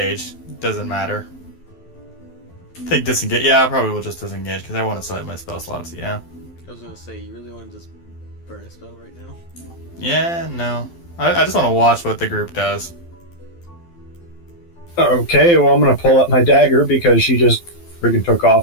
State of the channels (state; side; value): late; right; 12 ms